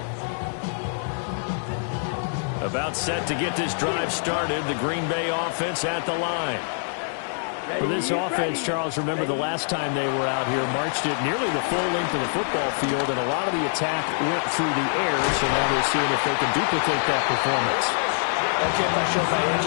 About set to get this drive started. The Green Bay offense at the line. For this offense, Charles, remember the last time they were out here, marched it nearly the full length of the football field, and a lot of the attack went through the air, so now they're seeing if they can duplicate that performance. Okay, if I show my age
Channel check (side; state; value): right; silent; 62 dB below the other